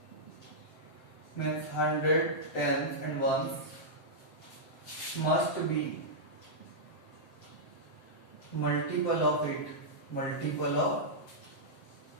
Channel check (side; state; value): right; late; 7.7 ms